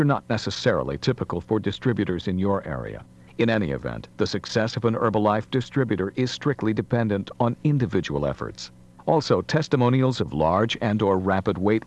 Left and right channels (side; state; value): both; identical; correlation 1.00